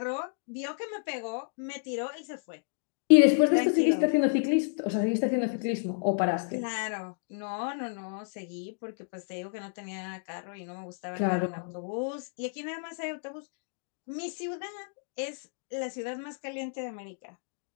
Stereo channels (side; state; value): right; silent; digital silence